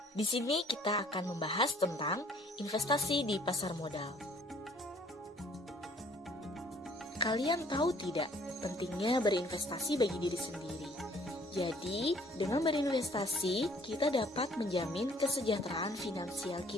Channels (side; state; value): both; normal; correlation 0.59